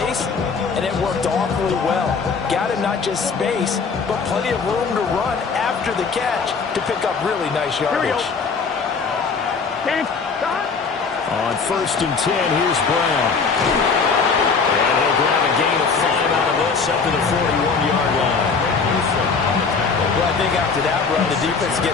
and it worked awfully well. Got him not just space, but plenty of room to run after the catch to pick up really nice yardage. On 1st and 10, here's Brown. And he'll grab a gain of 5 out of this up to the 41-yard line. after that run, the defense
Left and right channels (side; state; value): right; quieter; 5.1 dB